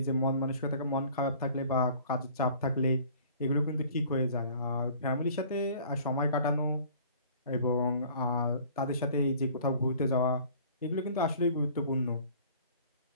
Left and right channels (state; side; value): inverted; both; correlation -0.50